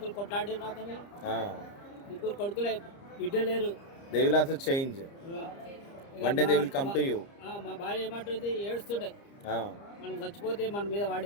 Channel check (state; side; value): late; right; 30 ms